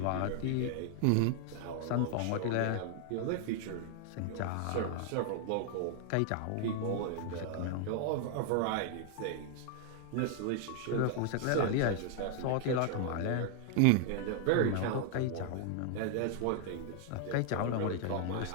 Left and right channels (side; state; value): both; different; correlation 0.00